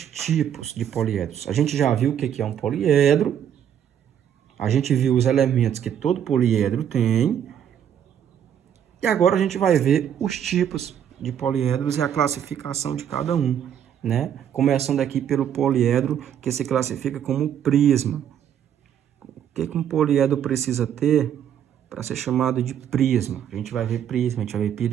tipos de poliedros. A gente já viu o que é um poliedro. A gente viu os elementos que todo poliedro tem. E agora a gente vai ver os tipos de poliedros e a classificação de cada um, né? Começando aqui pelo poliedro que se classifica como prisma. O que um poliedro precisa ter para ser chamado de prisma? A gente vai ver prisma, a gente vai ver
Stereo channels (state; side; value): quieter; left; 9.4 dB